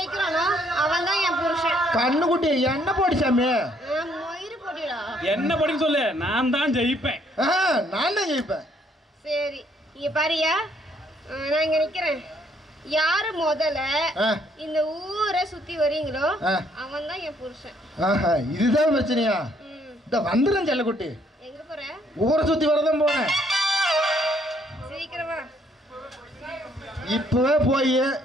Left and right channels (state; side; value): normal; both; correlation 0.67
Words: அவன் தான் என் புருஷன். கண்ணுக்குட்டி என்ன போடி சாமி? மயிறு போட்டிடா. என்ன படின்னு சொல்லு, நான் தான் ஜெயிப்பேன். நான் தான் ஜெயிப்பேன். சரி, இங்க பாரியா, நான் இங்க நிக்கிறேன். யாரு முதல்ல இந்த ஊரை சுத்தி வரீங்களோ அவன் தான் என் புருஷன். இதுதான் பிரச்சனையா? இந்த வந்துடும் செல்லக்குட்டி. எங்க போற? ஊரை சுத்தி வரதான் போனேன். சீக்கிரமா இப்பவே போய்